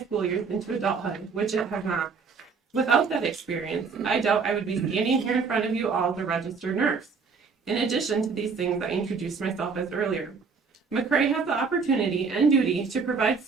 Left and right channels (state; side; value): quieter; left; 5.2 dB